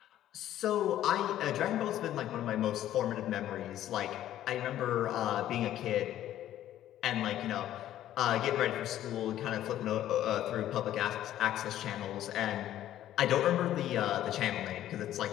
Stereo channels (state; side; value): quieter; right; 12.5 dB